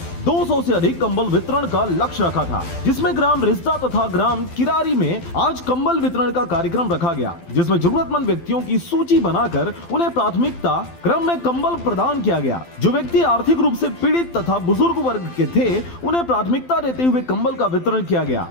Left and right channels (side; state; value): right; late; 12 ms